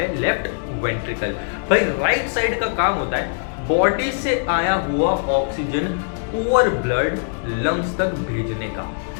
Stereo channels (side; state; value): right; silent; digital silence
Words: लेफ्ट वेंट्रिकल। भाई राइट साइड का काम होता है बॉडी से आया हुआ ऑक्सीजन पुअर ब्लड लंग्स तक भेजने का।